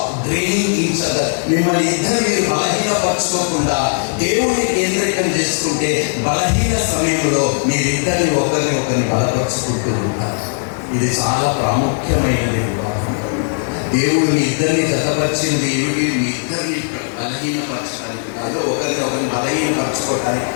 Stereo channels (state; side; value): silent; right; digital silence